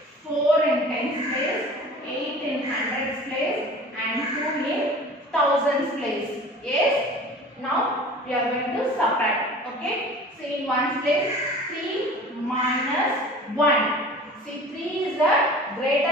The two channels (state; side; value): normal; both; correlation 0.42